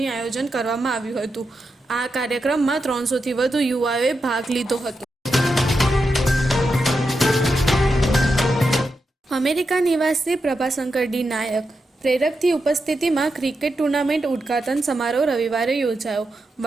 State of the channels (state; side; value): normal; both; correlation 0.87